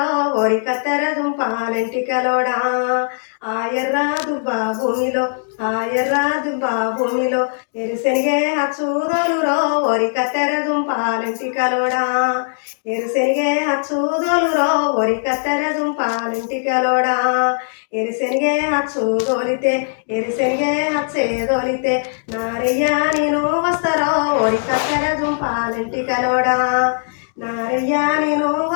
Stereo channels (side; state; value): right; silent; digital silence